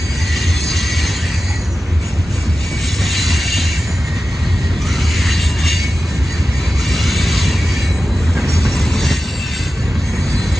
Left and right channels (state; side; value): normal; both; correlation 0.93